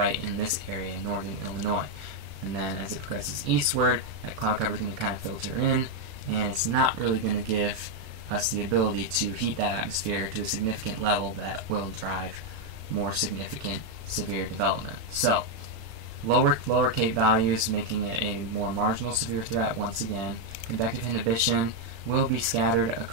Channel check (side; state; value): left; late; 36 ms